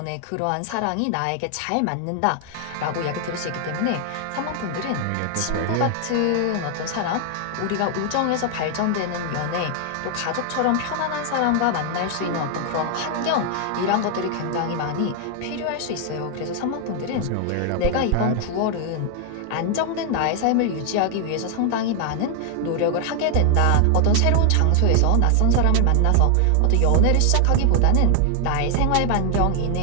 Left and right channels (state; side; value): different; both; correlation 0.00